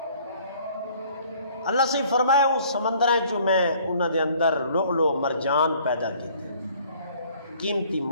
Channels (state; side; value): inverted; both; correlation -0.56